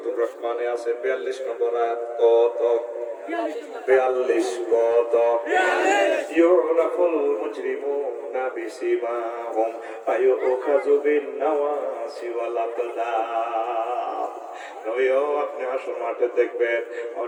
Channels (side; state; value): both; identical; correlation 1.00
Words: রহমানে আছে 42 নম্বর আয়াত। কত 42 কত? ইউরাফুল মুজরিমুনা বিসিমাহুম ফায়ুখাযু বিন নাওয়াসি ওয়াল আকদাম। নয়ও আপনি হাসর মাঠে দেখবেন